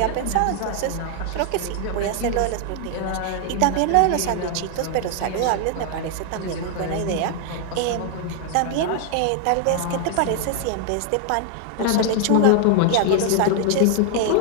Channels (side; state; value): both; different; correlation 0.00